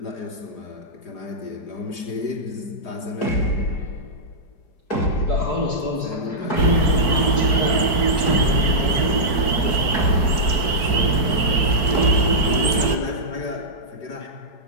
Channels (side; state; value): right; late; 4.5 ms